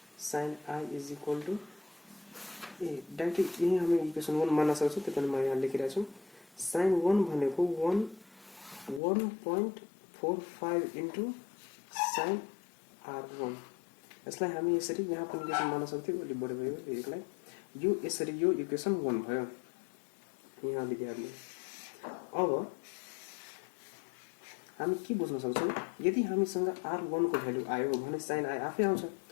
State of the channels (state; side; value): drops out; right; at 9.0 s